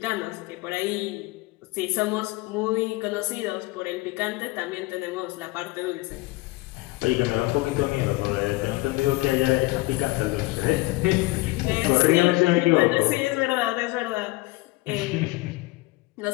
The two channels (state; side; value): quieter; right; 21.4 dB